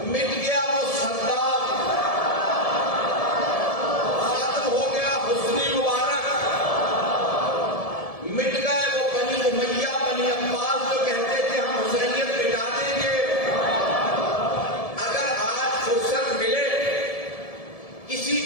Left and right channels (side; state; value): right; late; 1.7 ms